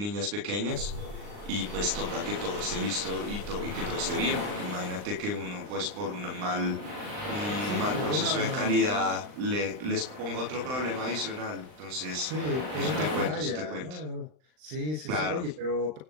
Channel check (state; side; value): late; left; 39 ms